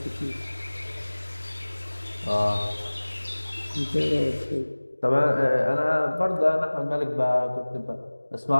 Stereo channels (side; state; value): both; inverted; correlation -1.00